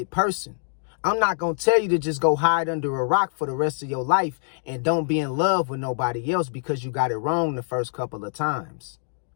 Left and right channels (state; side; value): silent; right; digital silence